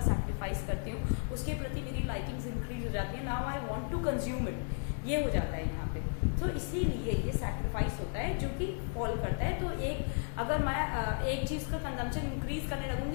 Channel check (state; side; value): silent; right; 55 dB below the other